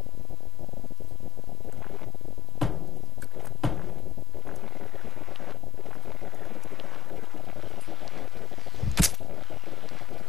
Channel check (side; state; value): both; normal; correlation 0.98